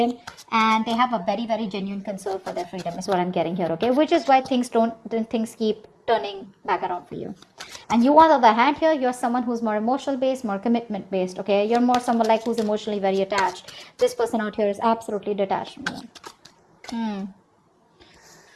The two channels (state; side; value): identical; both; correlation 1.00